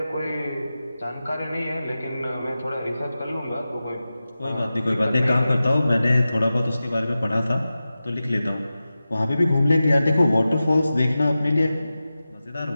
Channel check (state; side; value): inverted; both; correlation -0.94